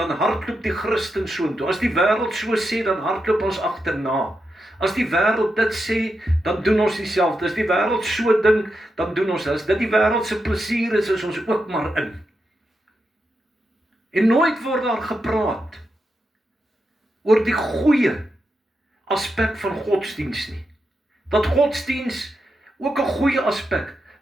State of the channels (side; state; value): both; normal; correlation 0.86